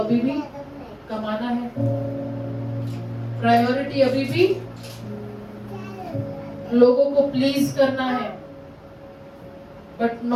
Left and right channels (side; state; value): both; identical; correlation 1.00